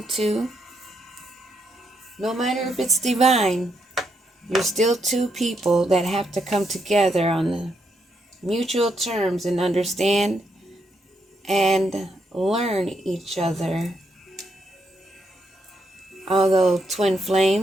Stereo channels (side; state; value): both; normal; correlation 0.78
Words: No matter if it's divine, you're still two people that have to come together on the mutual terms and understand and learn each other. Although twin